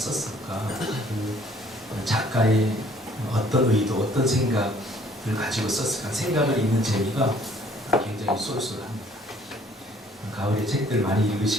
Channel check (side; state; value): both; normal; correlation 0.59